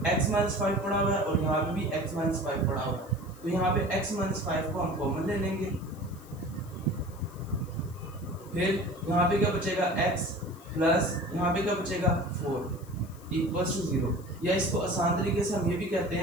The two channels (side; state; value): left; noise; hiss, 24 dB below the sound